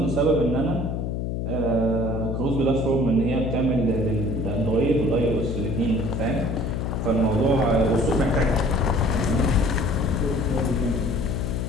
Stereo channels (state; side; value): noise; left; hum, 2 dB below the sound